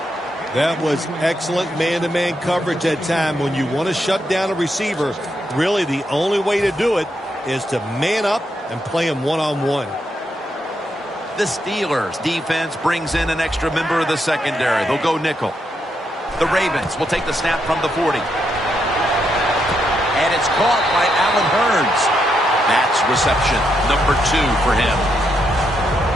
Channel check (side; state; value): both; normal; correlation 0.80